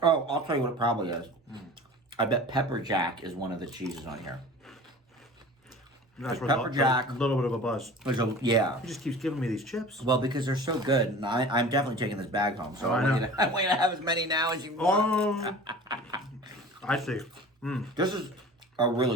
I'll tell you what it probably is. I bet pepper jack is one of the cheeses on here. That's where pepper jack- a little bit of a buzz. Yeah. He just keeps giving me these chips. Well, because they're so good, and I'm definitely taking this bag home. So I I want, know. you to, I want you to have as many now as you want. I see. This is a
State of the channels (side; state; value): both; normal; correlation 0.40